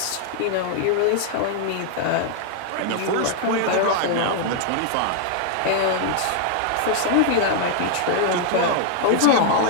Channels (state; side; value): different; both; correlation 0.00